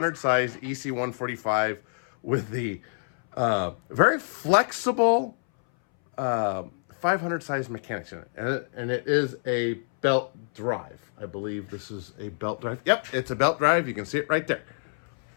size EC145 with the very flexible 500 size mechanics in it. And it is a belt drive. I believe this is a belt drive. Yep, it's a belt drive. You can see it right there.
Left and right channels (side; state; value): right; silent; 60 dB below the other